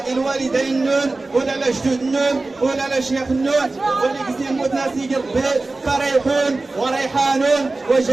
الوالدين النون ولا الجدود النون ولا الشيخ النون واللي كيزيد يموت ناس يجي ربي فريحون وريحان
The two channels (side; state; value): left; quieter; 3.3 dB